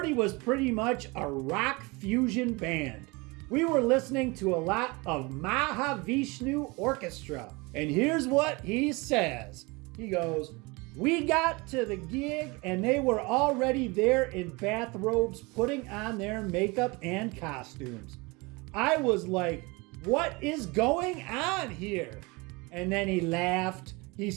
was pretty much a rock fusion band. We were listening to a lot of Mahavishnu Orchestra. And here's what he says. He goes, we got to the gig and they were already there in bathrobes putting on their makeup and costumes. I was like, what is going on here? And then he laughed. He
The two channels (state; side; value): quieter; left; 26.0 dB